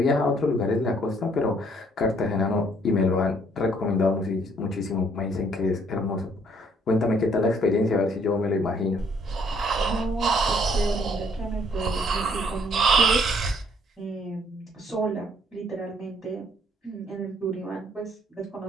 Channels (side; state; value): both; normal; correlation 0.65